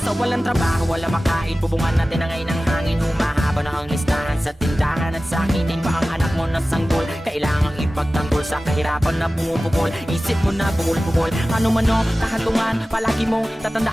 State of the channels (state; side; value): normal; both; correlation 0.96